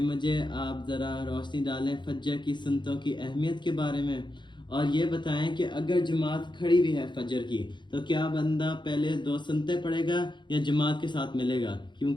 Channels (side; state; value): right; late; 0.22 ms